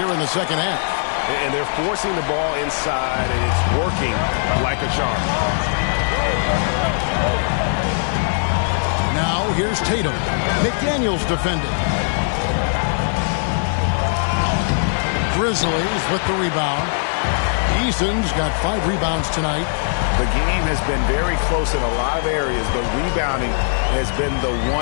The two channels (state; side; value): silent; right; digital silence